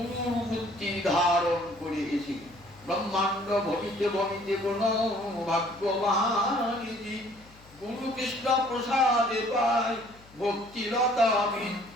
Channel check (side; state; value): left; noise; hum, 25 dB below the sound